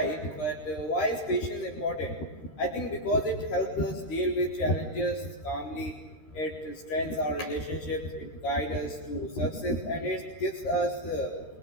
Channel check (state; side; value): late; right; 13 ms